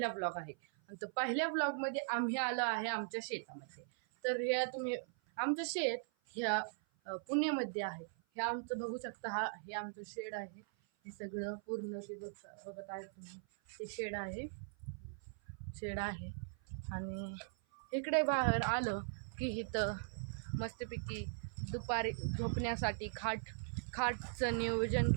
ब्लॉग आहे आणि तो पहिल्या ब्लॉगमध्ये आम्ही आलो आहे आमच्या शेतामध्ये. तर हे तुम्ही आमचं शेत ह्या पुण्यामध्ये आहे. हे आमचं बघू शकता, हे आमचं शेड आहे. हे सगळं पूर्ण ते बघत आहे तुम्ही, ते शेड आहे आणि इकडे बाहेर आलं की इथं मस्तपैकी दुपारी झोपण्यासाठी खाटचं नियोजन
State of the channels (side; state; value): left; silent; 51 dB below the other